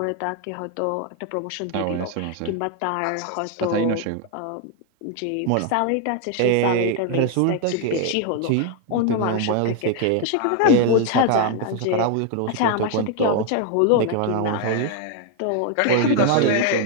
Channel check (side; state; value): both; different; correlation 0.01